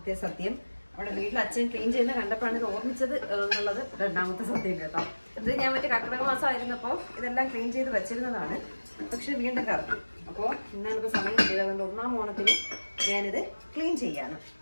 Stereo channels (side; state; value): both; inverted; correlation -1.00